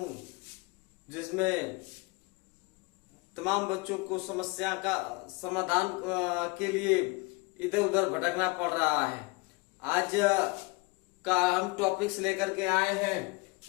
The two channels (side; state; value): right; quieter; 26.6 dB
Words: जिसमें तमाम बच्चों को समस्या का समाधान के लिए इधर उधर भटकना पड़ रहा है। आज का हम टॉपिक्स लेकर के आए हैं